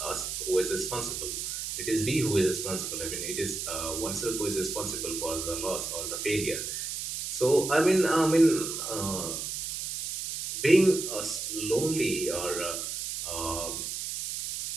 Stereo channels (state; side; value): noise; right; hiss, 4 dB below the sound